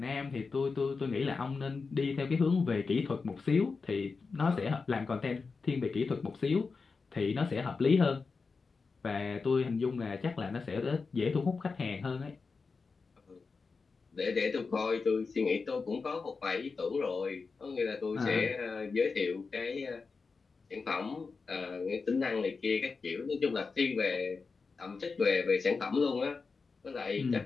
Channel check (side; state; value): right; quieter; 4.6 dB